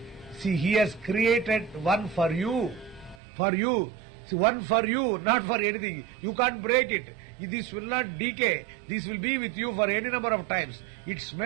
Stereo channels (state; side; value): drops out; left; at 3.2 s